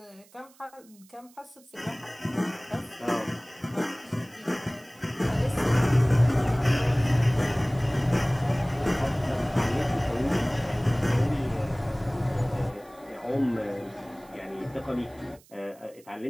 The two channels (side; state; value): right; noise; hiss, 27 dB below the sound